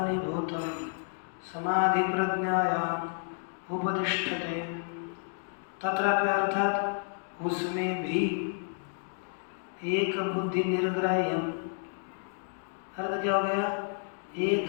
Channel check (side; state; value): right; silent; digital silence